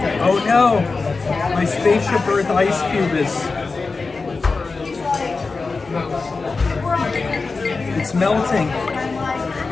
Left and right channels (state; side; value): quieter; right; 4.1 dB